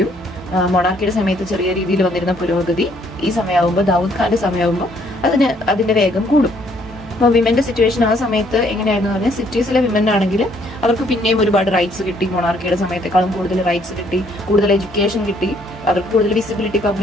മൊണാർക്കിയുടെ സമയത്ത് ചെറിയ രീതിയിൽ വന്നിരുന്ന പുരോഗതി ഈ സമയമാകുമ്പോൾ, ദാവൂദ് ഖാന്റെ സമയമാകുമ്പോൾ അതിന്റെ വേഗം കൂടും. അപ്പോൾ വിമന്റെ സിറ്റുവേഷൻ ആ സമയത്ത് എങ്ങനെയായിരുന്നു പറഞ്ഞാൽ, സിറ്റീസിലെ വിമൻ ആണെങ്കിൽ അവർക്ക് പിന്നെയും ഒരുപാട് റൈറ്റ്സ് കിട്ടി. മൊണാർക്കിയുടെ സമയത്തേക്കാളും കൂടുതൽ റൈറ്റ്സ് കിട്ടി, കൂടുതൽ എഡ്യൂക്കേഷൻ കിട്ടി, അവർക്ക് കൂടുതൽ വിസിബിലിറ്റി,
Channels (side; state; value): both; normal; correlation 0.66